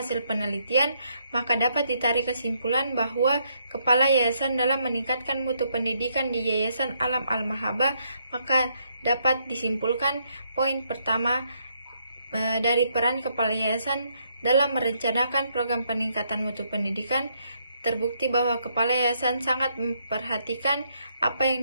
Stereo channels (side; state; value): both; inverted; correlation -0.74